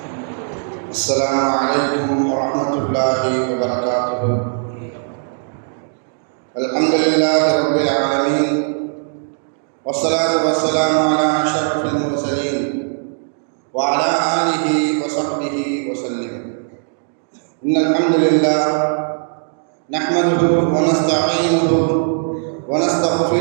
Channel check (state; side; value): silent; left; digital silence